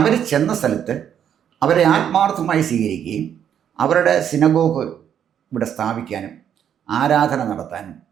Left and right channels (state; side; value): quieter; left; 9.1 dB